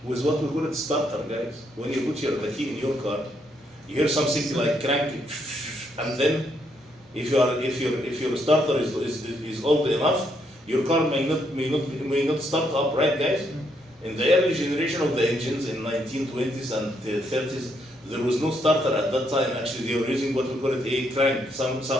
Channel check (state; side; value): normal; both; correlation 0.75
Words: With what we call it starter, guys. When you put the key in your car, you hear something like cranking, and then if your starter is old enough, your car may not start up, right, guys? In the early generation of the engines in 1920s and 30s, there was no starter at that time. Actually, they were using what we call it a crank, some